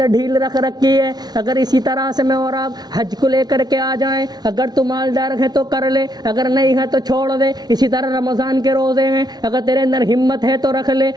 ڈھیل رکھ رکھی ہے۔ اگر اسی طرح سے میں اور آپ حج کو لے کر کے آ جائیں، اگر تو مالدار ہے تو کر لے، اگر نہیں ہے تو چھوڑ دے۔ اسی طرح رمضان کے روزے ہیں، اگر تیرے اندر ہمت ہے تو رکھ لے،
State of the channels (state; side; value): late; left; 0.19 ms